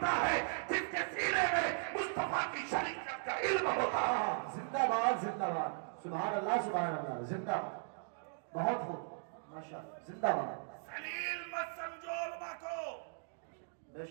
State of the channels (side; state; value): left; silent; digital silence